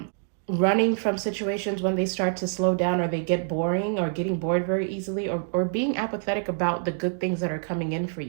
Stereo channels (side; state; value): left; silent; digital silence